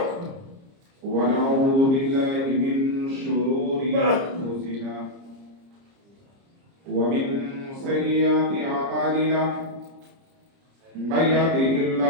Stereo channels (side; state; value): left; late; 30 ms